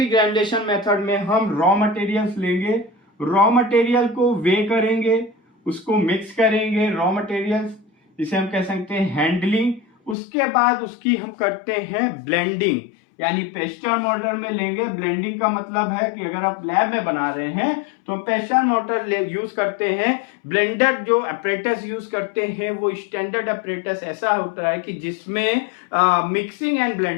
ग्रेनुलेशन मेथड में हम रॉ मटेरियल्स लेंगे, रॉ मटेरियल को वे करेंगे, उसको मिक्स करेंगे, रॉ मटेरियल्स, जिसे हम कह सकते हैं हैंडलिंग। उसके बाद उसकी हम करते हैं ब्लेंडिंग, यानी पेस्टर मोटर में लेंगे। ब्लेंडिंग का मतलब है कि अगर आप लैब में बना रहे हैं तो पेस्टर मोटर यूज करते हैं। ब्लेंडर जो अपरेटस यूज करते हैं वो स्टैंडर्ड अपरेटस ऐसा होता है कि जिसमें मिक्सिंग एंड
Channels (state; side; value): drops out; right; at 10.2 s